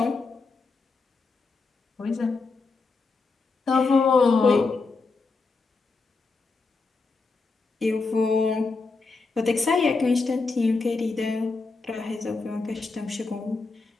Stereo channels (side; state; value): right; quieter; 4.0 dB